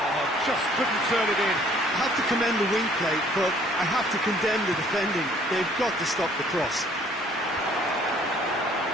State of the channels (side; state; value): both; normal; correlation 0.58